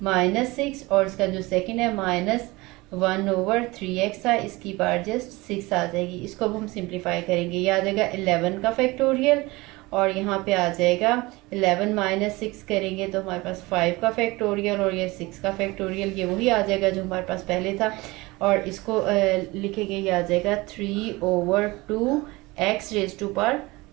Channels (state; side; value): quieter; left; 22.1 dB